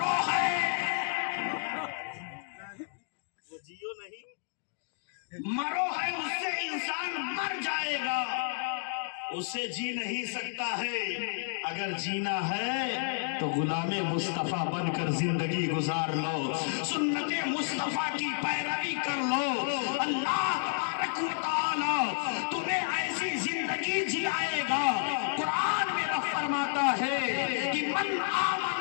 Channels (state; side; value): silent; right; digital silence